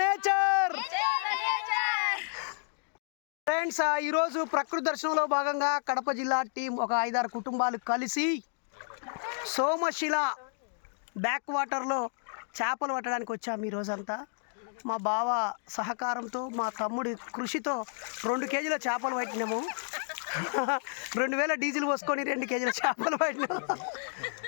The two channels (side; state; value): right; silent; digital silence